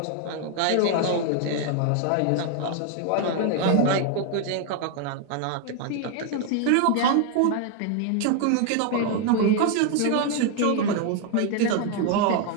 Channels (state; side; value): different; both; correlation 0.01